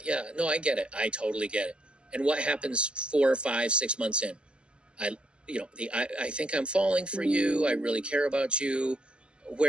Yeah, no, I get it. I totally get it. And what happens 4 or 5, 6 months in? I think I'm falling for you. I really care about you.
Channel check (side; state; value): left; late; 0.052 ms